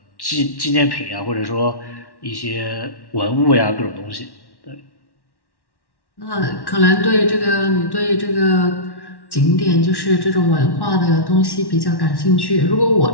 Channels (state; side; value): late; right; 1.1 ms